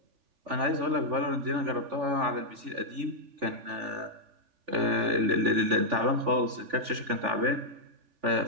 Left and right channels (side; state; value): left; late; 3.4 ms